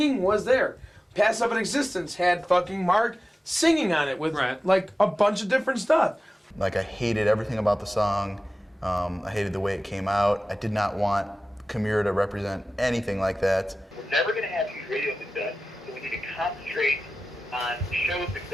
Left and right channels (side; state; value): both; normal; correlation 0.96